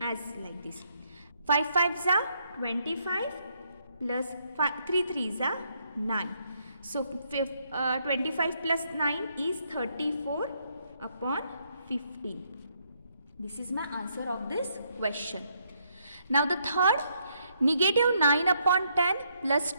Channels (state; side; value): inverted; both; correlation -0.73